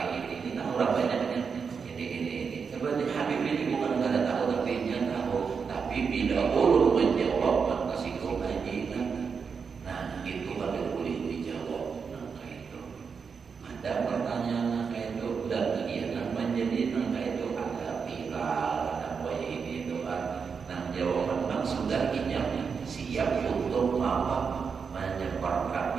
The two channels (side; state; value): left; quieter; 5.9 dB